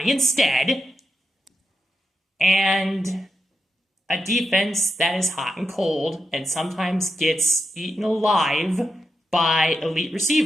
instead, and a defense that is hot and cold and sometimes gets eaten alive by elite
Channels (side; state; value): both; normal; correlation 0.86